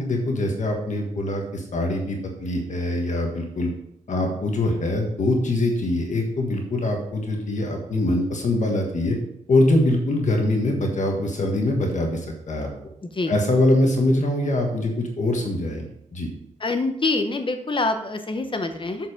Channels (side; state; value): both; normal; correlation 0.73